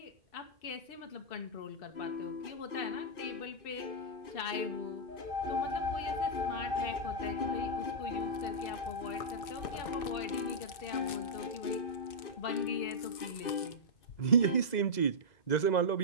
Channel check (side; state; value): right; late; 2.6 ms